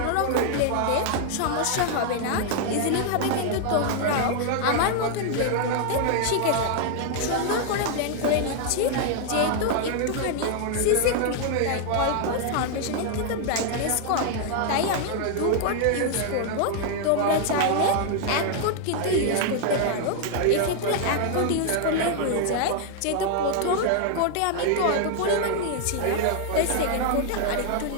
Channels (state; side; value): different; both; correlation 0.00